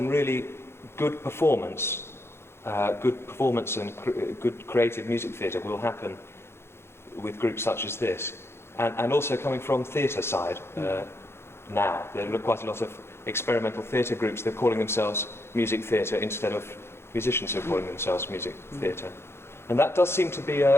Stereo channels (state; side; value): late; right; 0.12 ms